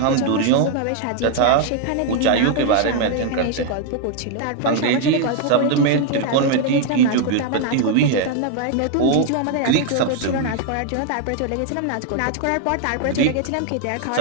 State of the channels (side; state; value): both; different; correlation 0.00